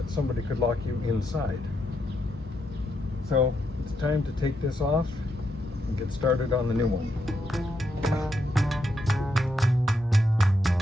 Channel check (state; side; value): normal; both; correlation 0.80